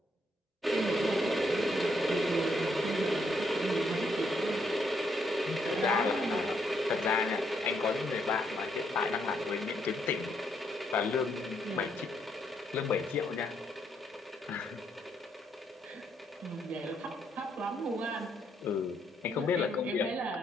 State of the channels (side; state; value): both; normal; correlation 0.75